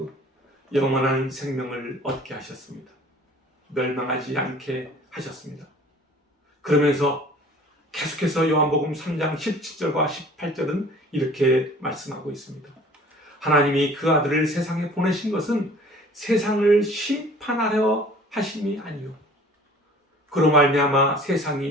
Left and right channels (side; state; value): both; normal; correlation 0.49